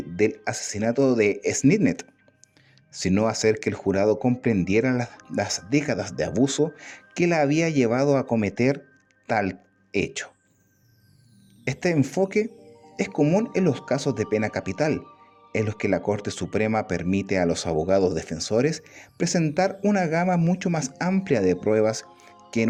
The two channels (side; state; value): both; identical; correlation 1.00